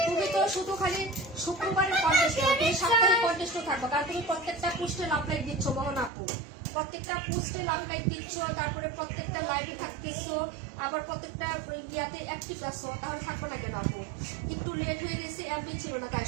তুমি তো শুধু খালি শুক্রবারের কন্টেস্ট, তুমি সাপ্তাহিক কন্টেস্টও থাকবো, কারণ তুমি প্রত্যেকটা পোস্টে লাভ লাইক দিচ্ছ মোহন আপু, প্রত্যেকটা পোস্টে লাভ লাইক দিচ্ছ, তারপরে প্রত্যেকটা লাইভে থাকতেছো, আবার প্রত্যেকটা ইয়াতে অ্যাক্টিভ আছো, তাহলে থাকবো না কেন আপু? একটু লেট হয়ে গেছে, এমবি ছিল না, তাই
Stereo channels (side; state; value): left; drops out; at 6.1 s